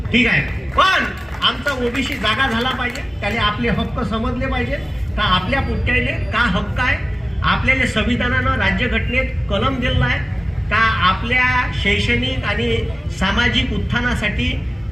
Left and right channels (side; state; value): both; normal; correlation 0.97